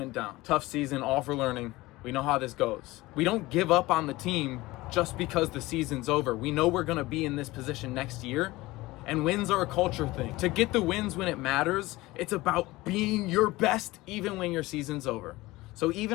down. Tough season, all for learning. We know how this goes. We don't give up on the team just because the season's over. We know we're gonna be in this position next year, and wins are a culture thing. To get the wins when it matters, it's about being your best even when your season's over. So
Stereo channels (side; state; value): right; quieter; 19.7 dB